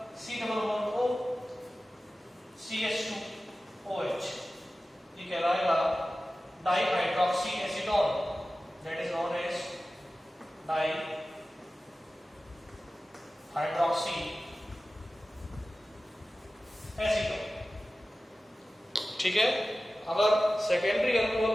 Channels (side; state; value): both; normal; correlation 0.95